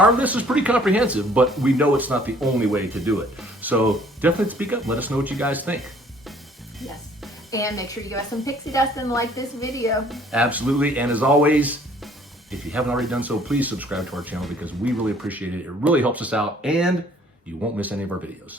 list is pretty comprehensive, but we know it's not the only way to do it. So definitely speak up. Let us know what you guys think. Yes. And make sure you give us some pixie dust and like this video. Absolutely. And as always, if you haven't already done so, please subscribe to our channel because we really appreciate it. It really helps us out and you won't miss any of our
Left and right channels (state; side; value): normal; both; correlation 0.58